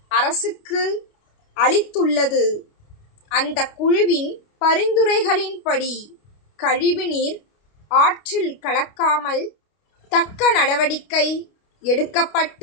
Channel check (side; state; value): right; late; 29 ms